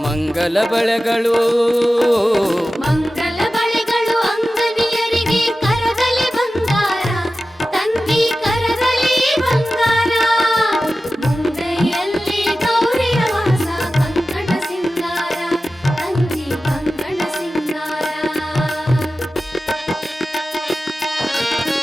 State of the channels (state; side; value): normal; both; correlation 0.94